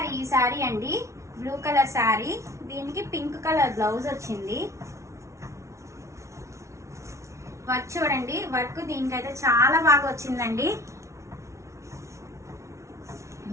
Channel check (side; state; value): left; late; 0.14 ms